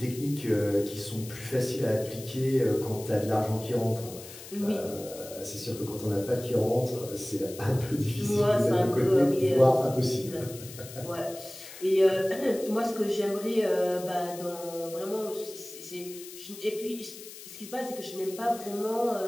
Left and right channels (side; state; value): left; noise; hiss, 15 dB below the sound